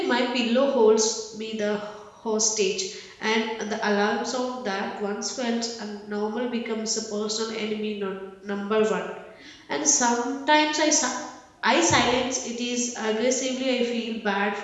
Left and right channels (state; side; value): identical; both; correlation 1.00